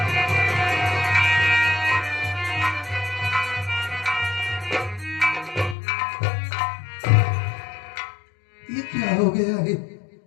ये क्या हो गया है?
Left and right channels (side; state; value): right; drops out; at 5.8 s